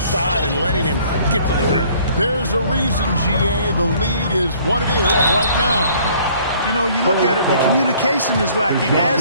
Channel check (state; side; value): inverted; both; correlation -0.57